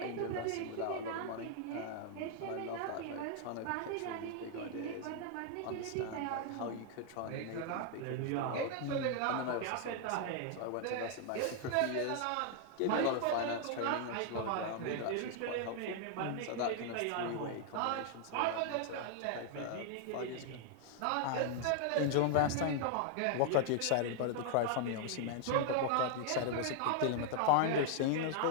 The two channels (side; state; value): both; different; correlation 0.00